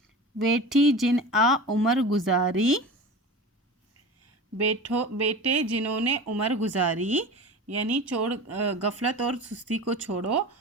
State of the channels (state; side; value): normal; both; correlation 0.33